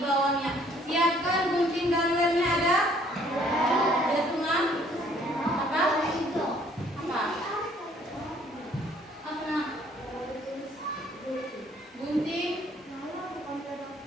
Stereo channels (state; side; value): normal; both; correlation 0.61